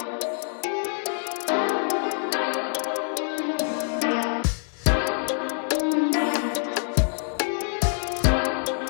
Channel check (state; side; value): silent; right; 61 dB below the other